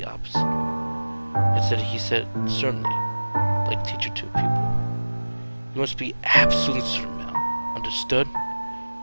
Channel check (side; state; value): both; inverted; correlation -1.00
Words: opposite. Instead, he said, certainly, like teacher to a pupil. You must be absolutely certain, Mel. Understood?